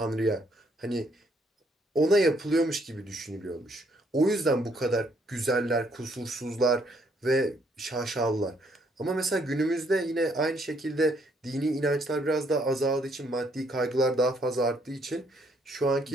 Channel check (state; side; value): normal; both; correlation 0.69